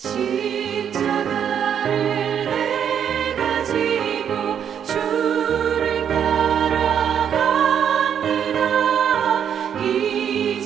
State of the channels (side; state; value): left; quieter; 8.5 dB